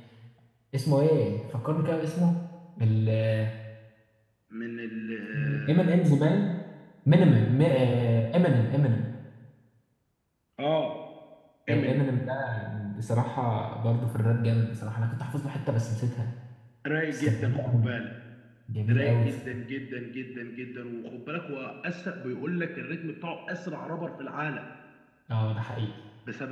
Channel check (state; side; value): identical; both; correlation 1.00